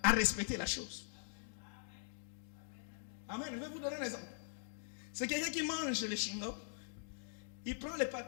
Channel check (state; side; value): silent; right; digital silence